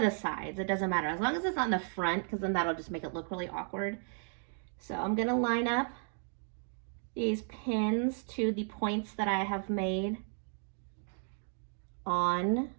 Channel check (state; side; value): silent; left; 55 dB below the other